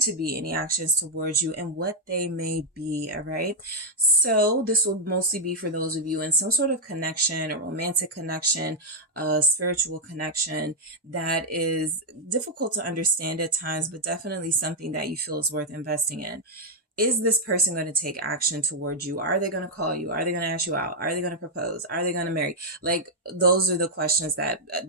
to be any actions towards you and what they may be, all right? So this will mostly be for those of you in some sort of connection, a romantic connection, a spiritual connection that is difficult to understand at times, but definitely something that you feel is worth investing in. Is this person going to take action towards you? Are they going to call you? Are they going to ask you out? Are they going to propose? Are they going to marry? Like, those are the questions that,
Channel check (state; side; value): normal; both; correlation -0.03